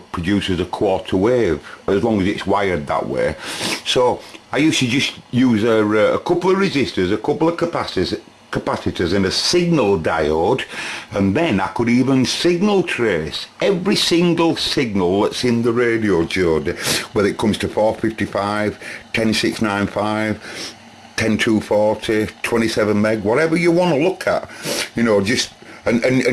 produces a quarter wave, as long as it's wired that way. So I used to just use a couple of resistors, a couple of capacitors and a signal diode, and then I could even signal trace every single signal that's in the radio, Jodie, whether it comes to 455, 10695, 10240, 27 meg, whatever you want to look at, you know, just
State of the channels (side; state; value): both; identical; correlation 1.00